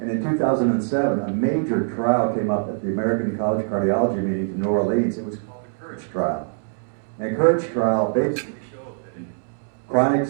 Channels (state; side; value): silent; left; 63 dB below the other